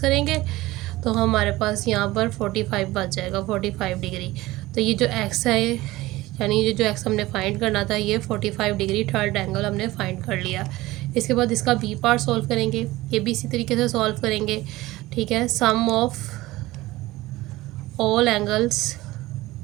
तो हमारे पास यहाँ पर 45 बच जाएगा, 45 डिग्री। तो ये जो एक्स है, यानी ये जो एक्स हमने फाइंड करना था, ये 45 डिग्री थर्ड एंगल हमने फाइंड कर लिया। इसके बाद इसका बी पार्ट सॉल्व करेंगे, ये भी इसी तरीके से सॉल्व करेंगे। ठीक है, sum of all angles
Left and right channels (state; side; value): quieter; left; 18.4 dB